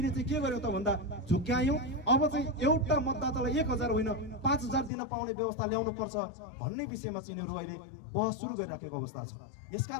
चाहिँ के गर्यौं त भन्दा झुक्यायौं। अब चाहिँ एउटा मतदातालाई 1000 होइन 5000 दिन पाउने व्यवस्था ल्याउनु पर्छ भन्ने विषयमा चाहिँ यिनीहरू अहिले बहस सुरु गरिराखेको अवस्था छ।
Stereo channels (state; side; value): drops out; right; at 4.9 s